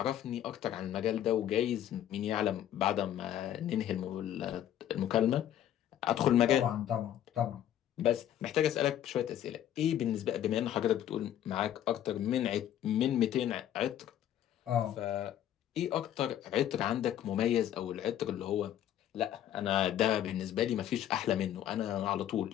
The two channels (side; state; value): right; quieter; 11.2 dB